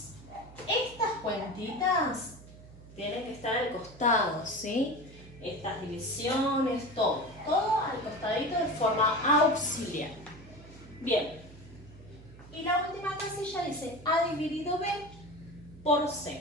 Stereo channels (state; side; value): noise; right; hum, 19 dB below the sound